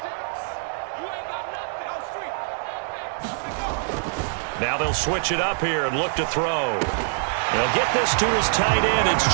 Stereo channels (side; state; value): left; silent; digital silence